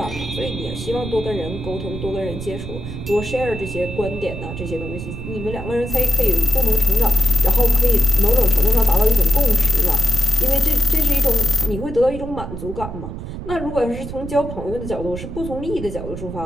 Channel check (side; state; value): right; noise; rumble, 9 dB below the sound